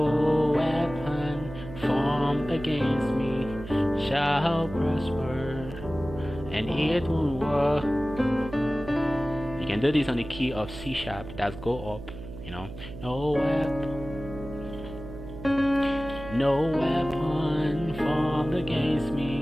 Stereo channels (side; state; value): right; noise; hum, 12 dB below the sound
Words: weapon formed against me shall prosper, and it won't work. You can do this on the key of C sharp. That's go up. You know, no weapon formed against